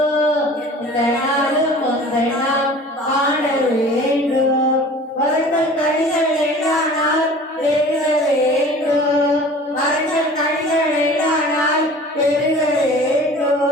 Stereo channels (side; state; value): both; normal; correlation 0.44